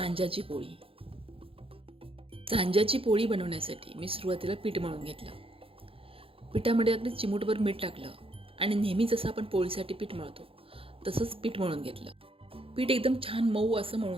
पोळी. सांज्याची पोळी बनवण्यासाठी मी सुरुवातीला पीठ मळून घेतलं. पिठामध्ये अगदी चिमूटभर मीठ टाकलं आणि नेहमी जसं आपण पोळीसाठी पीठ मळतो तसंच पीठ मळून घेतलं. पीठ एकदम छान मऊ असं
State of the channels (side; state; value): left; late; 0.27 ms